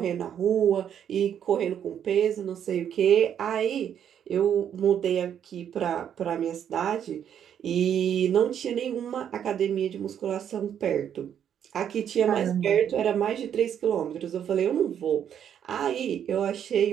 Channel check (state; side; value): quieter; left; 9.1 dB